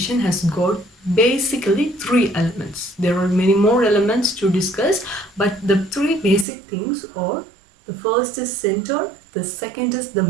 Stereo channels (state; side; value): drops out; left; at 6.5 s